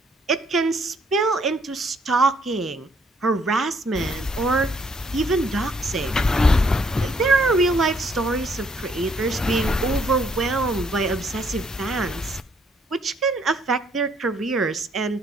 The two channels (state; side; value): normal; both; correlation 0.67